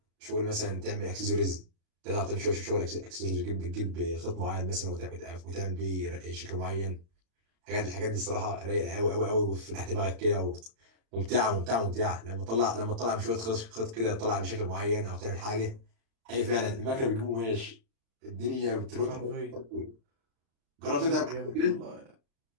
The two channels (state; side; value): late; left; 35 ms